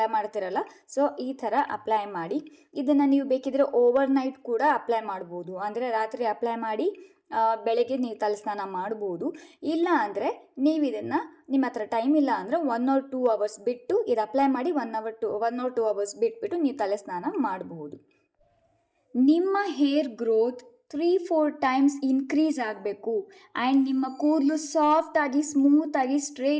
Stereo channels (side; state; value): both; identical; correlation 1.00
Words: ಮಾಡ್ತಿರಲ್ಲ, ಸೊ ಈ ಥರ ಅಪ್ಲೈ ಮಾಡಿ. ಇದನ್ನು ನೀವು ಬೇಕಿದ್ರೆ ಓವರ್ನೈಟ್ ಕೂಡ ಅಪ್ಲೈ ಮಾಡ್ಬೋದು. ಅಂದರೆ ರಾತ್ರಿ ಅಪ್ಲೈ ಮಾಡಿ ಬೆಳಗ್ಗೆ ನೀವು ತಲೆಸ್ನಾನ ಮಾಡ್ಬೋದು. ಇಲ್ಲ ಅಂದರೆ ನೀವು ಇದನ್ನು ನಿಮ್ಮ ಹತ್ರ ಟೈಮ್ ಇಲ್ಲ ಅಂದರೆ 1 or 2 hours ಬಿಟ್ಟು ಇದು ಅಪ್ಲೈ ಮಾಡಿ 1 or 2 hours ಬಿಟ್ಬಿಟ್ಟು ನೀವು ತಲೆಸ್ನಾನ ಮಾಡಬಹುದು. ನಿಮ್ಮ ಹೇರ್ ಗ್ರೋತ್ 3-4 ಟೈಮ್ಸ್ ಇನ್ಕ್ರೀಸ್ ಆಗಬೇಕು ಆ್ಯಂಡ್ ನಿಮ್ಮ ಕೂದಲು ಸಾಫ್ಟಾಗಿ ಸ್ಮೂತಾಗಿ